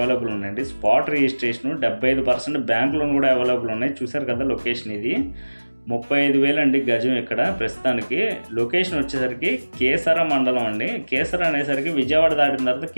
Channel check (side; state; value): both; inverted; correlation -1.00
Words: ఉన్నాయండి. స్పాట్ రిజిస్ట్రేషన్ 75% బ్యాంక్ లోన్ కూడా అవైలబుల్ ఉన్నాయి. చూసారు కదా లొకేషన్ ఇది 35,000 అండి గజం. ఇక్కడ ప్రస్తుతానికి లొకేషన్ వచ్చేసరికి కేసర మండలం అండి. కేసర అనేసరికి విజయవాడ దాటిన తర్వాత